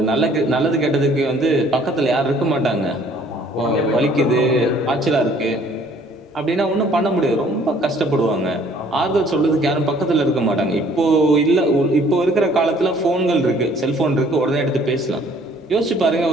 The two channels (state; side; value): normal; both; correlation 0.58